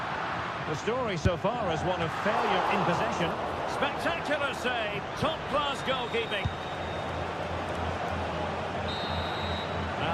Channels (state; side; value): identical; both; correlation 1.00